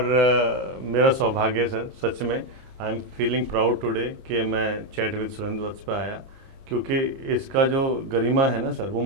मेरा सौभाग्य है सर, सच में I am feeling proud today कि मैं चैट विद सुरेंद्र वत्स पे आया, क्योंकि इसका जो गरिमा है ना सर, वो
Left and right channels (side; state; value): left; late; 30 ms